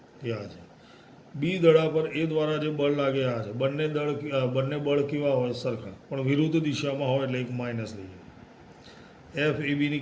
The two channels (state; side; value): identical; both; correlation 1.00